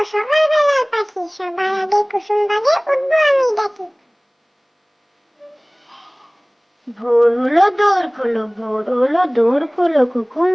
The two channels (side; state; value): both; identical; correlation 1.00